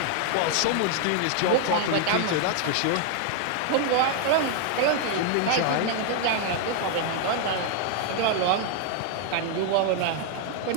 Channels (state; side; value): different; both; correlation 0.00